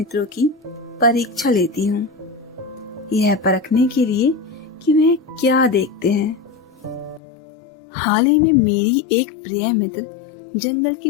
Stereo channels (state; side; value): drops out; right; at 7.2 s